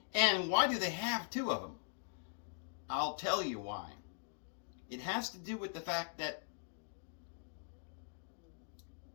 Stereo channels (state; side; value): silent; right; digital silence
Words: And why do they have two of them? I'll tell you why. It has to do with the fact that